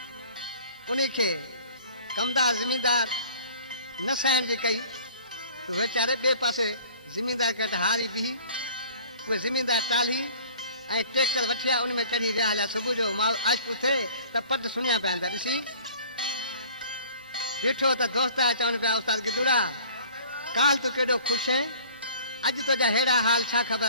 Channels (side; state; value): both; inverted; correlation -0.49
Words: उन्हीं खे कमदार ज़मींदार न सहण जी कई तो वीचारे ॿिए पासे ज़मींदार खे हारी बिही उहे ज़मींदार टाली ऐं ट्रैक्टर वठी आया उन में चढ़ी विया हलिया सुबुह जो आशिक़ु थिए त पद सुञा पिया था ॾिसी ॾिठो त दोस्त आया चवनि पिया उस्ताद गिदुड़ा काल तूं केॾो ख़ुशि आहे अॼु तुंहिंजा अहिड़ा हाल छा